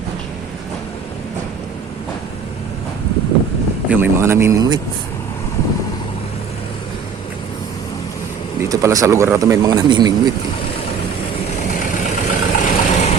Yung may mga namimingwit. Dito pala sa lugar na to may mga namimingwit.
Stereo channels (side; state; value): left; quieter; 6.2 dB